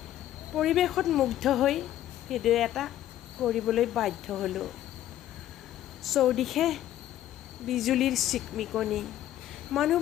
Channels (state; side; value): quieter; right; 12.8 dB